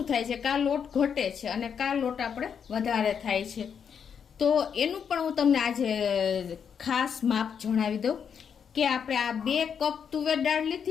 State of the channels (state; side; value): quieter; right; 7.3 dB